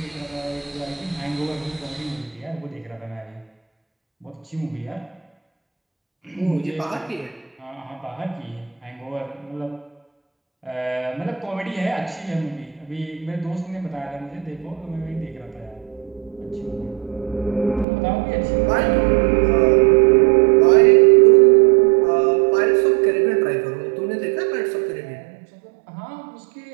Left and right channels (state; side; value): drops out; left; at 17.9 s